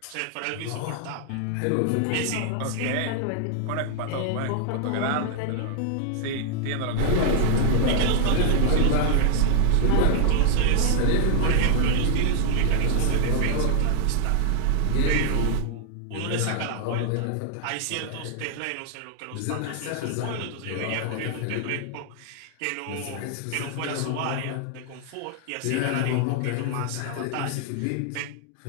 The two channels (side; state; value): both; different; correlation 0.00